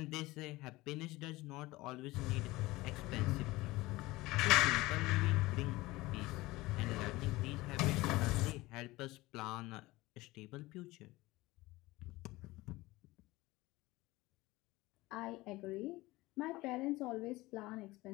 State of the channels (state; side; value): quieter; right; 19.9 dB